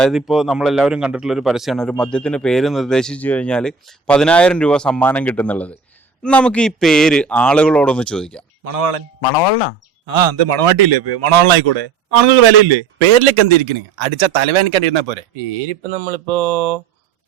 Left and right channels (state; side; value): quieter; left; 5.3 dB